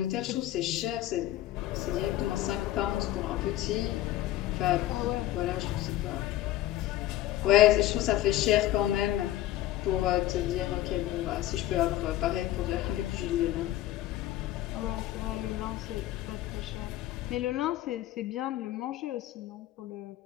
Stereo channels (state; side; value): quieter; right; 14.2 dB